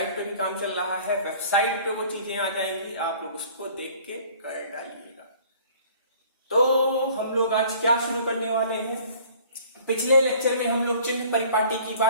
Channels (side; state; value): both; inverted; correlation -0.51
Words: पे भी काम चल रहा है, वेबसाइट पे वो चीजें आ जाएंगी, आप लोग उसको देख के कर डालिएगा। तो हम लोग आज क्या शुरू करने वाले हैं। पिछले लेक्चर में हम लोग चिन्ह परिपाटी की